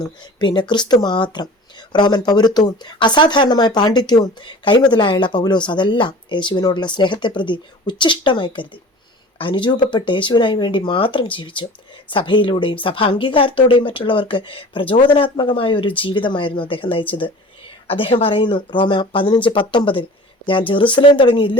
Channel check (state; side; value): normal; both; correlation 0.41